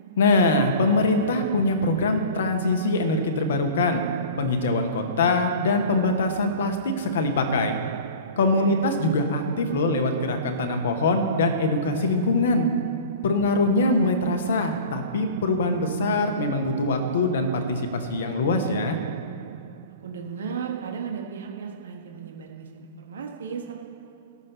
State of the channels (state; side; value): inverted; both; correlation -0.38